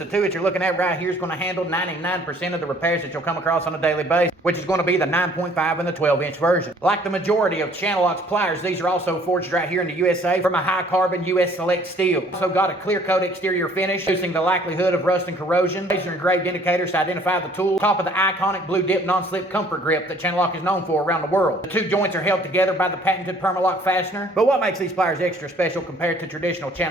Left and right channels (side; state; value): both; normal; correlation 0.57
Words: 2 that you're looking at right here is going to handle 99% of the repairs that you'll come across on a daily basis, which is going to be the 9.5 and the 12 inch version. Like the majority of CHANNELLOCK's pliers, these are also forged right here in the USA from a High Carbor U.S. select steel. Also got a clear coat exterior finish, reducing the likelihood of rust and corrosion. Laser engraved indicators to identify the tool. Top of the iconic blue dip non-slip comfort grip that CHANNELLOCK is known for around the world. The 2 joints are held together by the patented Permalock fastener. But what makes these pliers extra special compared to traditional